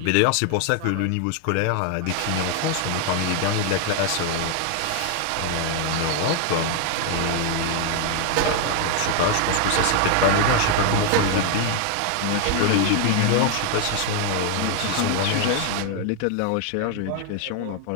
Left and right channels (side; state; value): both; different; correlation 0.00